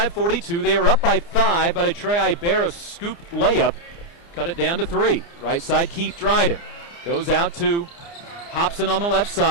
They are up by 5, but a Trey Ibarra scoop layup cut it down to 3. Right side, Keith Dryden. Goes out to Hobson on the left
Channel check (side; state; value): right; late; 29 ms